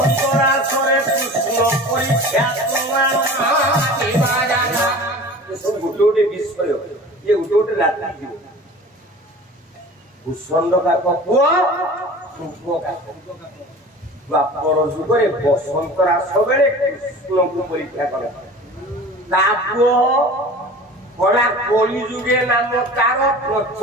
କୃଷ୍ଣ ପରୀକ୍ଷା ପ୍ରମାଣ। ଏସବୁ ଗୋଟେ ଗୋଟେ ବିଷୟ, ଇଏ ଗୋଟେ ଗୋଟେ ରାତି ଯିବ। ଭୂଷଣ୍ଡ କାକ ପୁଅ ଧ୍ରୁବ କାକ। ଦ୍ୱାପର ଯୁଗରେ ବସନ୍ତ ରାସ ବେଳେ କୃଷ୍ଣଙ୍କୁ ପରୀକ୍ଷା କଲେ। ତା ପୁଅ କଳା କଳି ଯୁଗେ ନାମ ତାର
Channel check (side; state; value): both; normal; correlation 0.39